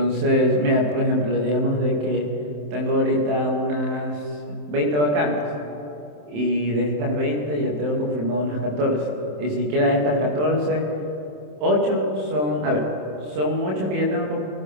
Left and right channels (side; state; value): left; late; 27 ms